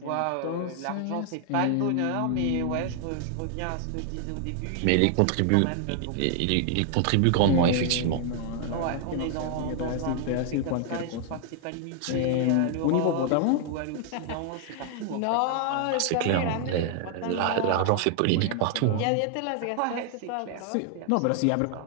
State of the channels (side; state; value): both; different; correlation 0.00